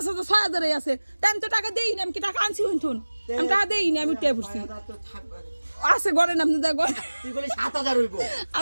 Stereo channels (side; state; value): both; inverted; correlation -1.00